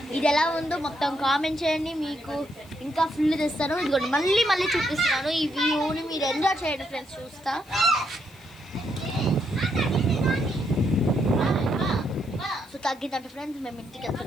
ఇది ఎలా ఉందో మొత్తం కామెంట్ చేయండి, మీకు ఇంకా ఫుల్ తెస్తాను. ఇదిగోండి మళ్ళీ చూపిస్తున్నాను ఈ వ్యూని, మీరు ఎంజాయ్ చేయండి ఫ్రెండ్స్. చూస్తా సో తగ్గిందంటే ఫ్రెండ్స్ మేము ఇంటికి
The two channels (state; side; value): noise; left; hiss, 27 dB below the sound